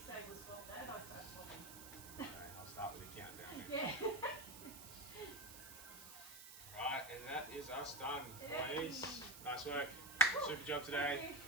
say we'll swap that, I start swapping. Okay, I'll start with the countdown. Yeah. Right, and that is us done, Yay. ladies. Nice work. Super job today.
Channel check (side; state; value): right; noise; hiss, 13 dB below the sound